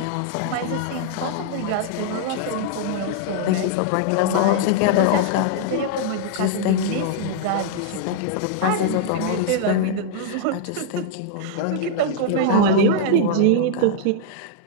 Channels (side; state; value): both; different; correlation -0.01